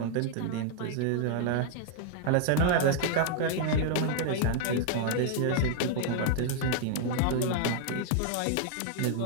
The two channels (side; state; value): both; different; correlation 0.00